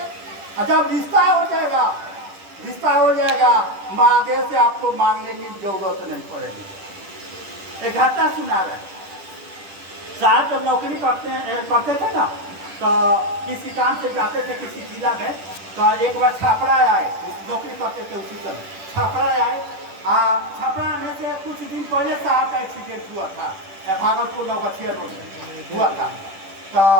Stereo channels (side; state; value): left; late; 10 ms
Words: जब रिश्ता हो जाएगा, रिश्ता हो जाएगा, महादेव से आपको मांगने की जरूरत नहीं पड़ेगी। एक घटना सुना रहे, साहब जब नौकरी करते थे ना, तो किसी काम से जाते थे किसी जिला में, तो एक बार छापड़ा आए, नौकरी करते थे उसी समय छापड़ा आए। छापड़ा आने से कुछ दिन पहले साहब का एक्सीडेंट हुआ था, भागलपुर नौगछिया रोड में हुआ था। तो